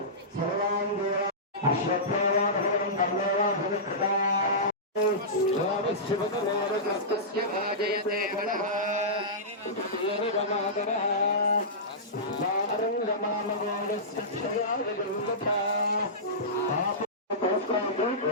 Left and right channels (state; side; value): normal; both; correlation -0.17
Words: सर्वाङ्गेन अश्वत्थेवाभवनं कल्लेवाभविष्यता स्वामिशिवतमोरग्रस्तस्य भाजयते गणः येनगमादरः सारङ्गमामगोडस्य क्षयावगुरुकथा